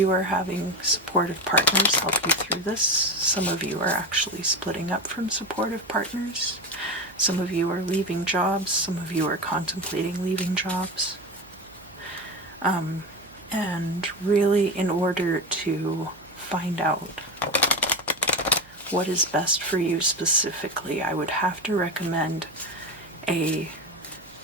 are having supportive partners help you through this. Some of you are actually splitting up from supportive partners. Some of you are leaving jobs. Some of you are contemplating leaving jobs. And really, in order to find out what is best for you specifically, I would have to recommend a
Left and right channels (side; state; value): right; noise; hum, 27 dB below the sound